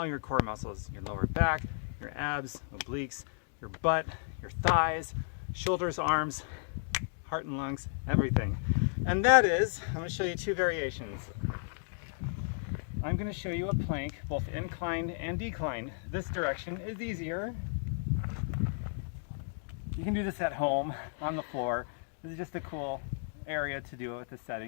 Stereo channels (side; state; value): right; silent; digital silence